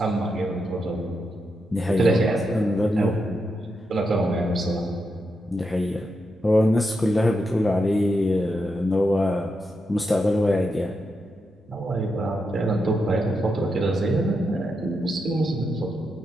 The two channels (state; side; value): normal; both; correlation 0.85